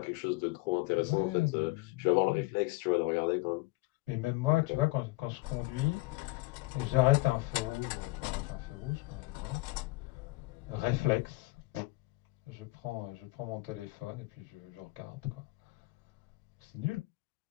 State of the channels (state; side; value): quieter; right; 22.6 dB